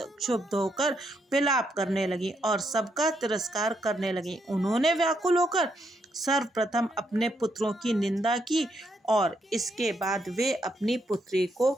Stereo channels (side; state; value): both; normal; correlation 0.77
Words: क्षुब्ध होकर विलाप करने लगी और सबका तिरस्कार करने लगी। उन्होंने व्याकुल होकर सर्वप्रथम अपने पुत्रों की निंदा की और इसके बाद वे अपनी पुत्री को